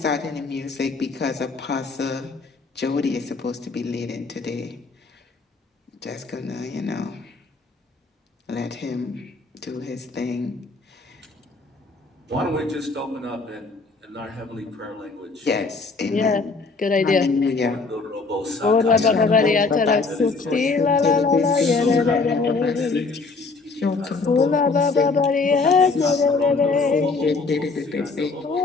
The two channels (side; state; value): right; quieter; 4.0 dB